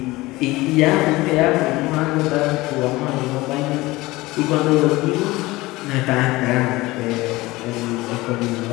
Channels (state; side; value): quieter; right; 20.1 dB